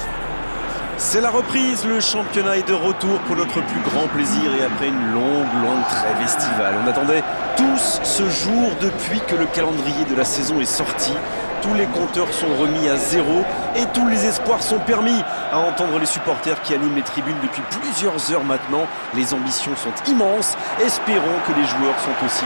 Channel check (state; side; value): inverted; both; correlation -1.00